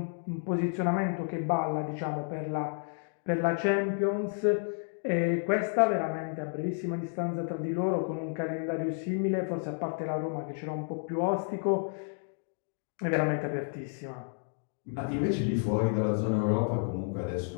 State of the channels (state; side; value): silent; right; 57 dB below the other